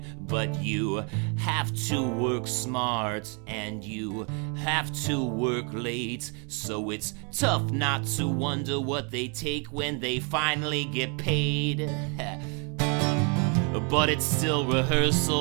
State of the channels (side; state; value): left; quieter; 36.6 dB